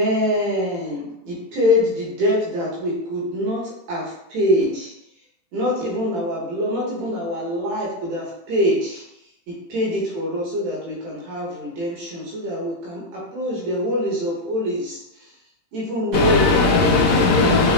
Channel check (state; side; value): late; left; 17 ms